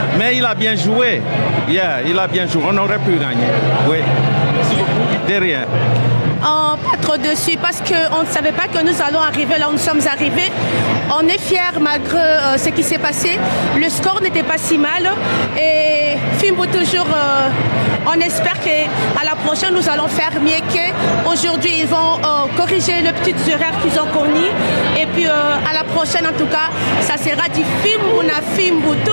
mais il a bien joué. Il a bien joué. On aurait pu gagner. Oui. Merci beaucoup. De rien. Pas trop dessus parce qu'on ne savait pas que nous allons arriver là où nous sommes arrivés. On est fiers malgré ce qui s'est passé. Le score n'était pas si mal. Et Fimbo toujours, on espère qu'à la prochaine nous allons faire mieux qu'aujourd'hui. Ils vont corriger les petites erreurs qu'ils ont commises. Et puis à la prochaine en tout cas, ça sera du Fimbo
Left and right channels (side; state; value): both; inverted; correlation -1.00